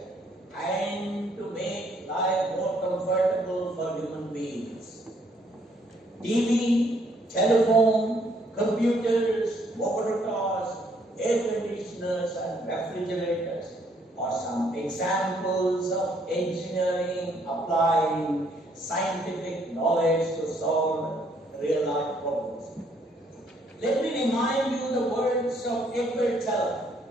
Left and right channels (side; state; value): both; normal; correlation 0.67